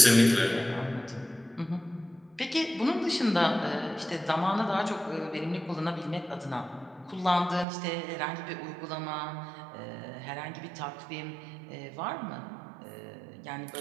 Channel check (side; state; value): left; drops out; at 7.7 s